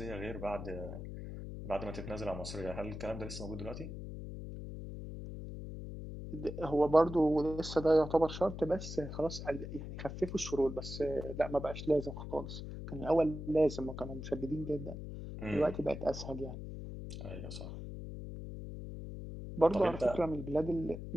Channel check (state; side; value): noise; left; hum, 8 dB below the sound